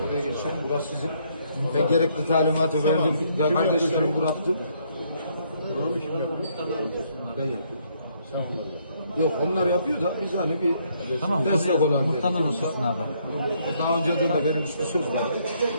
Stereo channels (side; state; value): both; inverted; correlation -0.70